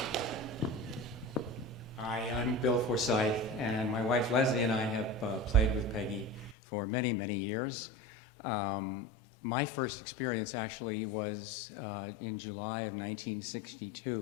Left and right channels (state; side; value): drops out; right; at 6.6 s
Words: Hi, I'm Bill Forsyth, and my wife Leslie and I have played with Peggy for many, many years. My first experience actually was in July of